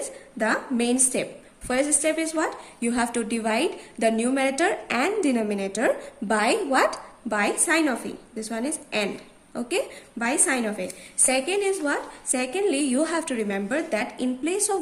the main step. First step is what? You have to divide the numerator and denominator by what? By sign of A. This one is AND. Okay, by sign of A. Second is what? Secondly, you have to remember that in place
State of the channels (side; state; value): both; identical; correlation 1.00